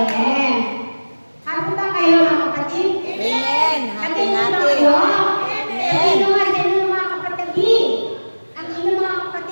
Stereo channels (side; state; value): both; inverted; correlation -1.00